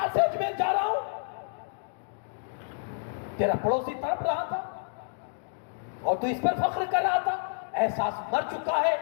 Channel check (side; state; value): right; silent; digital silence